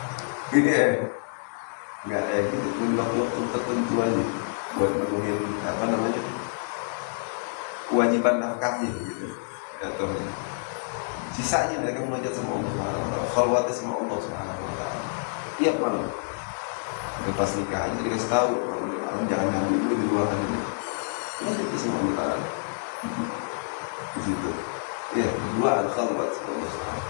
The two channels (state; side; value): silent; right; 60 dB below the other